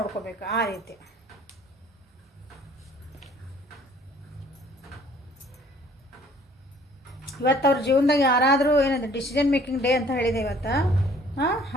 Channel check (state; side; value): normal; both; correlation 0.56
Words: ಆ ರೀತಿ ಇವತ್ತು ಅವ್ರ ಜೀವನದಾಗ ಯಾರಾದರೂ ಏನಂದ್ರೆ ಡಿಸಿಷನ್ ಮೇಕಿಂಗ್ ಡೇ ಅಂತ ಹೇಳಿದೆ ಇವತ್ತು.